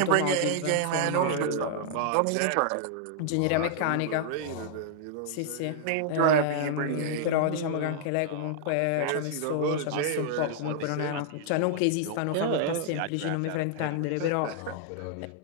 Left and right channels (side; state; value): both; different; correlation -0.01